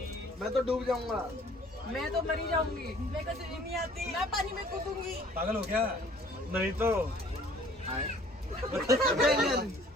मैं तो डूब जाऊंगा। मैं तो मरी जाऊंगी। मेरे को स्विमिंग नहीं आती। मैं पानी में कूदूंगी। पागल हो क्या? नहीं तो बैंगन।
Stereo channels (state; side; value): normal; both; correlation 0.54